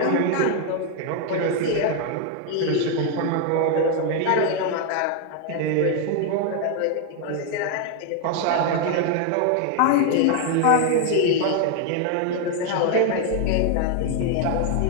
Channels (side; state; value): both; different; correlation 0.01